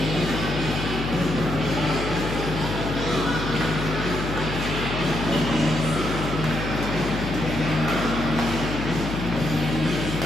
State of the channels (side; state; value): left; noise; hum, 5 dB below the sound